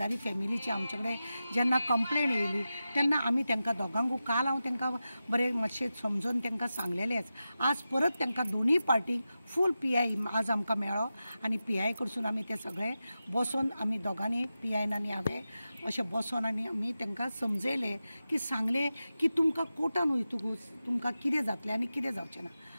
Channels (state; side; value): inverted; both; correlation -0.92